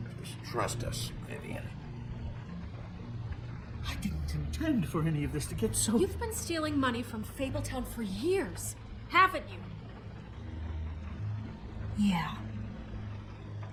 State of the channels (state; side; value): identical; both; correlation 1.00